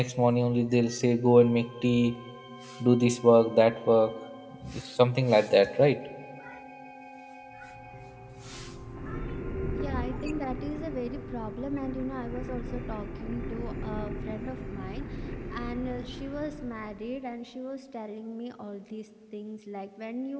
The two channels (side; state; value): both; identical; correlation 1.00